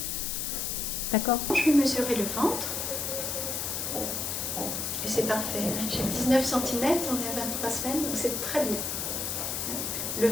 D'accord? Je vais mesurer le ventre. Et c'est parfait. J'ai 19 cm, on est à 23 semaines, donc c'est très bien. Le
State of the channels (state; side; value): noise; left; hiss, 2 dB below the sound